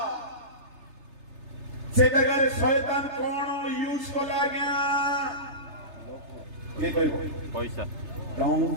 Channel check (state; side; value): late; left; 3.3 ms